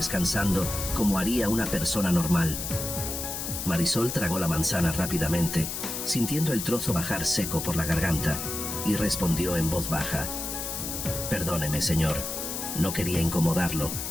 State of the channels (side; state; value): left; noise; hiss, 5 dB below the sound